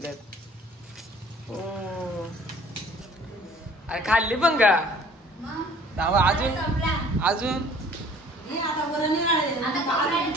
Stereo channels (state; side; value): normal; both; correlation 0.52